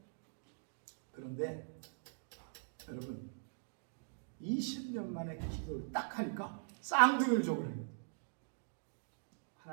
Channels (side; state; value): left; silent; digital silence